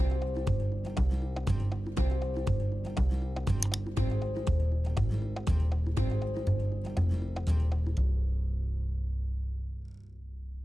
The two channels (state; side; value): normal; both; correlation 0.95